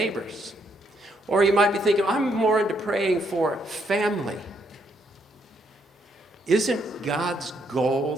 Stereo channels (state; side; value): normal; both; correlation 0.74